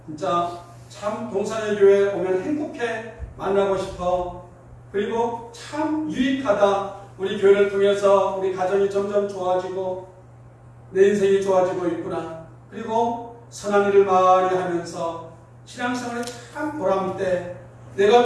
진짜 참 동산의 교회에 오면 행복해 만나고 싶어, 그리고 참 유익하다, 우리 교회를 통해서 우리 가정이 점점 좋아지고 내 인생이 좋아지고 있구나, 그리고 선한 일을 많이 하면서 신앙생활에 참 보람돼,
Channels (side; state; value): both; identical; correlation 1.00